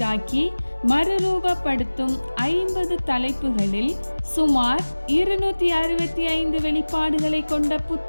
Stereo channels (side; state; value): both; inverted; correlation -1.00